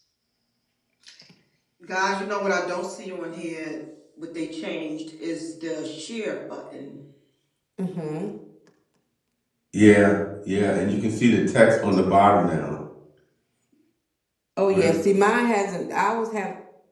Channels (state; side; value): identical; both; correlation 1.00